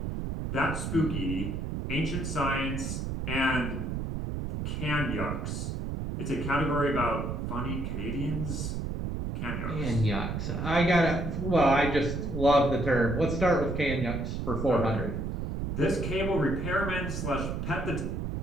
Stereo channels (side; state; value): right; noise; rumble, 3 dB below the sound